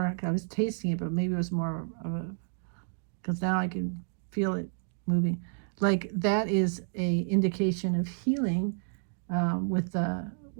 I was tasting it, but maybe it was more of a, because now I can feel it moving. Like that is a indication of healing. With the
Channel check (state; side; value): silent; left; digital silence